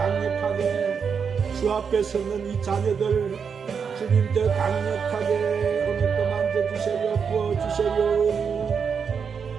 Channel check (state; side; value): quieter; left; 6.4 dB